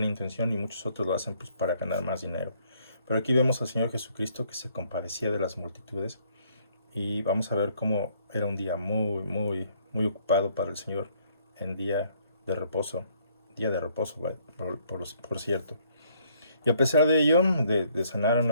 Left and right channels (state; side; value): inverted; both; correlation -0.66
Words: intención y muchos otros lo hacen pues para ganar más dinero. Pero aquí vemos al Señor Jesucristo que se compadecía de las multitudes, y vamos a ver cómo era un día muy, muy, muy ocupado para el Señor en día de reposo, por cierto. Y a pesar de ello, de sanar a